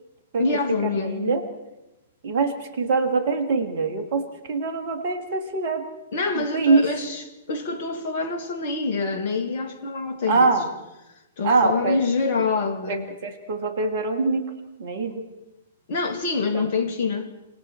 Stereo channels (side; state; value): both; inverted; correlation -0.57